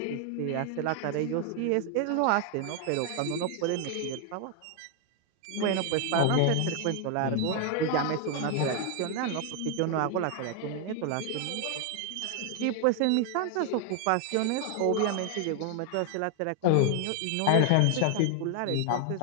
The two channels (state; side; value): different; both; correlation 0.00